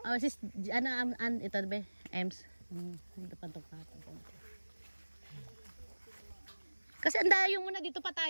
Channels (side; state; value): both; inverted; correlation -1.00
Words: Oh, sis, ito ba? Ems. Hindi pa patong konti. Kasi andayo muna dito pa